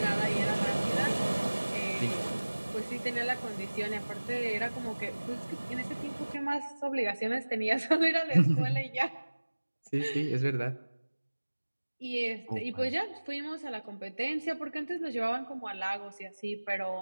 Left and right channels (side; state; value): both; inverted; correlation -1.00